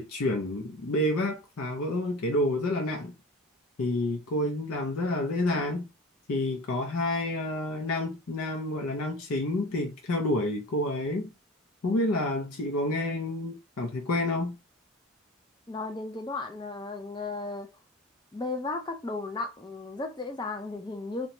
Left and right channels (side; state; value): both; normal; correlation 0.35